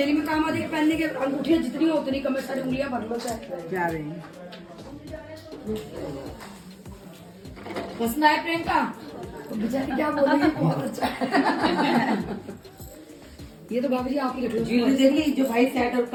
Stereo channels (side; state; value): both; identical; correlation 1.00